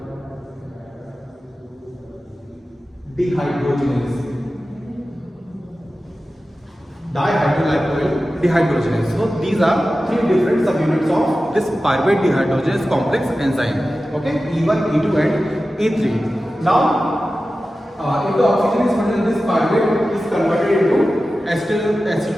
dehydrogenase. So these are 3 different subunits of this pyruvate dehydrogenase complex enzyme. Okay, E1, E2 and E3. Now, if the oxygen is present, this pyruvate is converted into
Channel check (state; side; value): normal; both; correlation 0.94